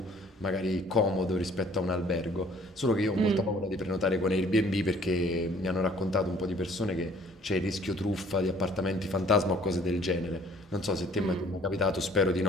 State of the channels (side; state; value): both; normal; correlation 0.56